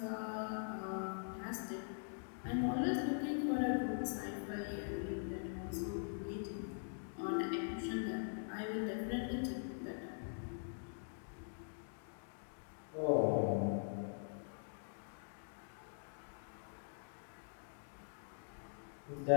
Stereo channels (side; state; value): right; silent; digital silence